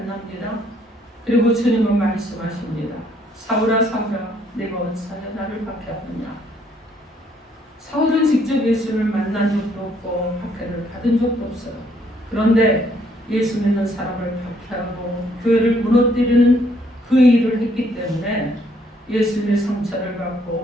그리고 주님은 말씀하십니다. 사울아, 사울아, 내가 어찌하여 나를 박해하느냐. 사울은 직접 예수를 만난 적도 없고 박해를 받은 적도 없어요. 그런데 예수 믿는 사람을 박해하고 교회를 무너뜨리는 그 일을 했기 때문에 예수님의 상처를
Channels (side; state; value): both; normal; correlation 0.67